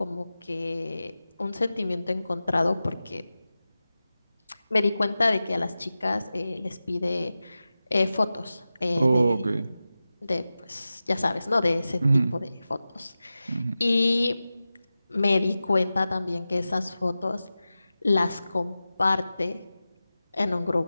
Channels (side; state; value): both; inverted; correlation -0.94